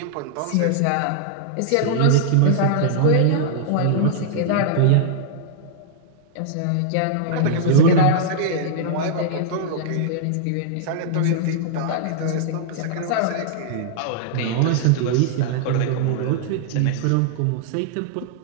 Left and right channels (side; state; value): both; different; correlation -0.01